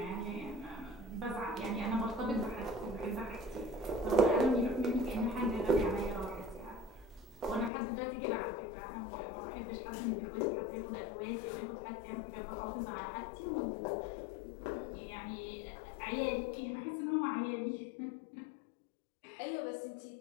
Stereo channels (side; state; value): right; drops out; at 7.7 s